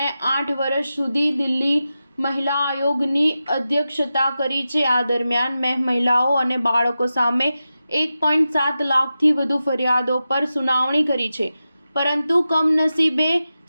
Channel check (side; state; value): both; inverted; correlation -0.92